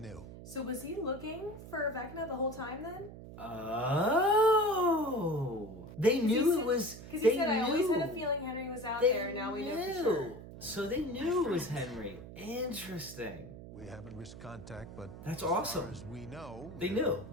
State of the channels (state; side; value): noise; right; hum, 14 dB below the sound